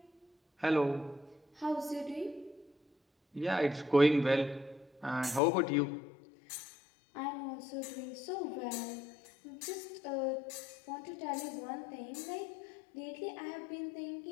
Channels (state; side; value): drops out; right; at 5.4 s